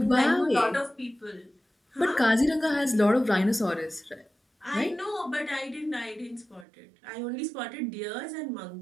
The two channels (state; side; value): drops out; left; at 6.7 s